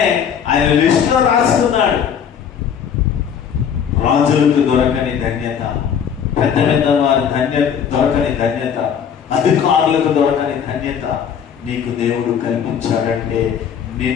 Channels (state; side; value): quieter; right; 7.9 dB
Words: ఆయన లిస్టులో రాసుకున్నాడు. రాజులకు దొరకని ధన్యత, పెద్ద పెద్ద వారి దొరకని ధన్యత, అధికారులకు దొరకని ధన్యత నీకు దేవుడు కల్పించాడంటే